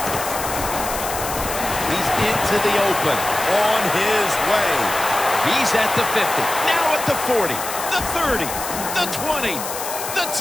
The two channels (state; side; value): noise; left; hiss, 7 dB below the sound